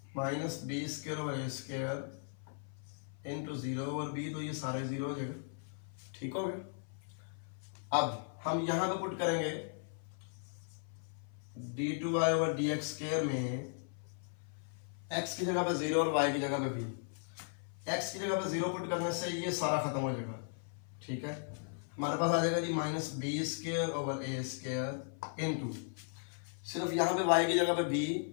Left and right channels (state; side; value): silent; right; 53 dB below the other